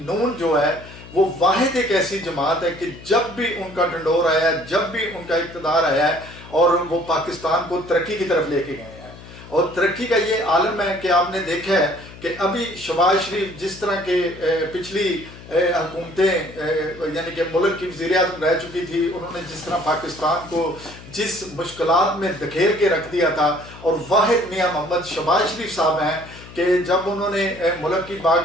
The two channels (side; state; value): left; noise; hum, 17 dB below the sound